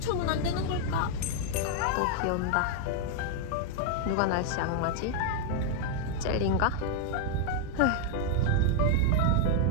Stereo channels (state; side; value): different; both; correlation 0.00